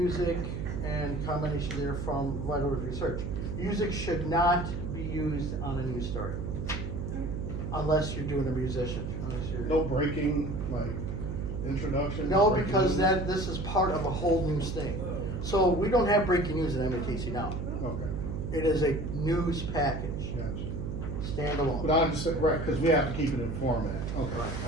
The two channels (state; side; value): noise; right; hum, 4 dB below the sound